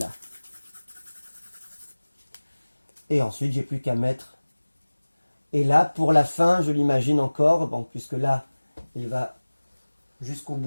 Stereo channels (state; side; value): inverted; both; correlation -1.00